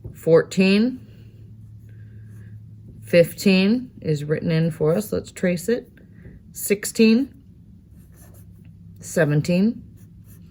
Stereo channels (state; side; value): identical; both; correlation 1.00